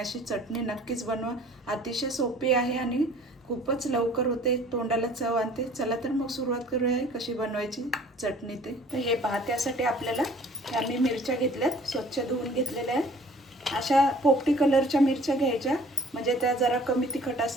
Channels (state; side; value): normal; both; correlation 0.51